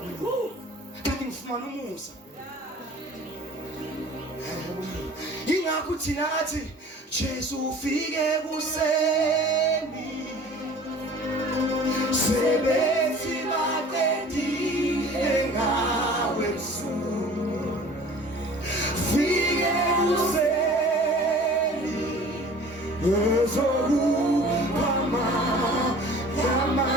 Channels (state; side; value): normal; both; correlation 0.46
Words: kanti ngifumana umusa ingakho thina athi Jesu ufike kuseni sebethi batendile ngawe msulu fike kuseni ezokupama